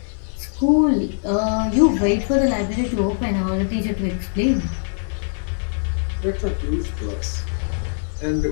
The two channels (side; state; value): right; silent; 60 dB below the other